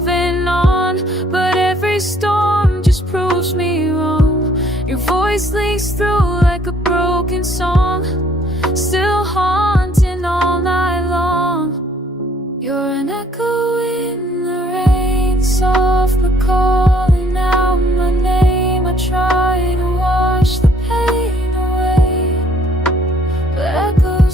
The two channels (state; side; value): normal; both; correlation 0.62